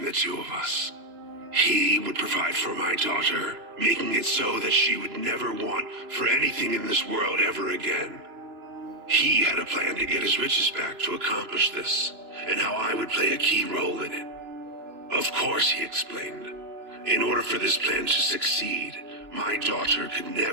the two of us. He would provide for my daughter, making it so that she would never want for anything in this world ever again. He had a plan to get his riches back to accomplish this, and how I would play a key role in it. Of course, he explained, in order for this plan to succeed, my daughter could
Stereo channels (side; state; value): left; late; 2.9 ms